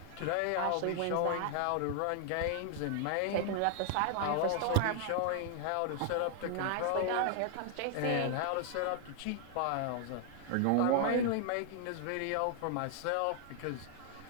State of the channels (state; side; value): different; both; correlation 0.00